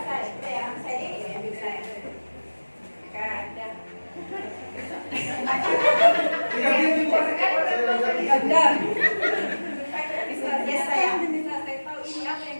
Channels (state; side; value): inverted; both; correlation -1.00